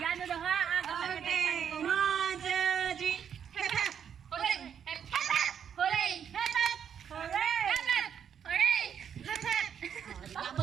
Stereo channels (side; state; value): left; quieter; 8.2 dB